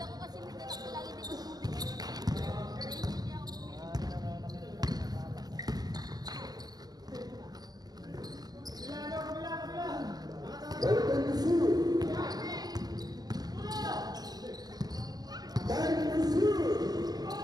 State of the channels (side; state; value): left; late; 0.19 ms